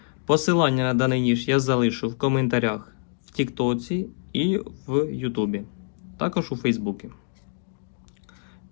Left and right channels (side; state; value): right; silent; digital silence